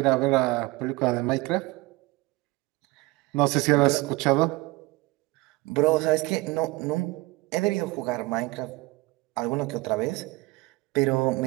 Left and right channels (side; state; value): left; quieter; 21.7 dB